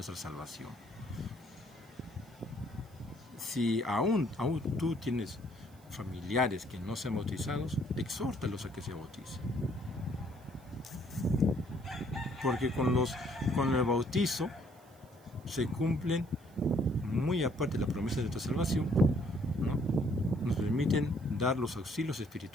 salvación. Si aún tú tienes familiares que no sean bautizados, exhórtalos a que se bauticen. Porque con el bautizo se cumplen, muy aparte de la promesa de nuestra salvación, ¿no? Nos permiten dar los auxilios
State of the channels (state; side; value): noise; right; hiss, 29 dB below the sound